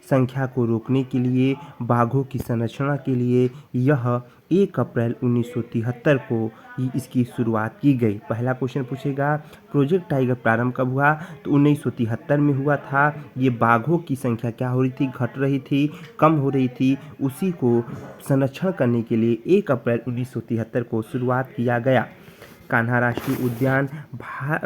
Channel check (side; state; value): both; identical; correlation 1.00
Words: संख्या को रोकने के लिए, बाघों की संरक्षण के लिए यह 1 अप्रैल 1973 को इसकी शुरुआत की गई। पहला क्वेश्चन पूछेगा प्रोजेक्ट टाइगर प्रारंभ कब हुआ, तो 1973 में हुआ था। ये बाघों की संख्या क्या हो रही थी, घट रही थी, कम हो रही थी, उसी को संरक्षण करने के लिए 1 अप्रैल 1973 को शुरुआत किया गया। कान्हा राष्ट्रीय उद्यान